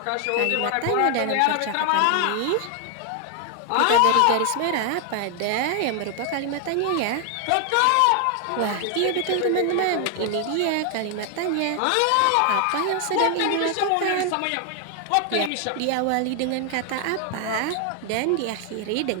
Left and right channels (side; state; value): both; different; correlation 0.00